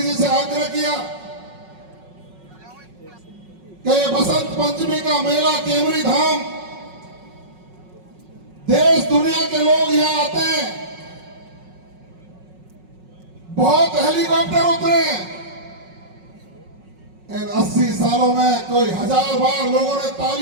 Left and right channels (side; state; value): left; late; 5.4 ms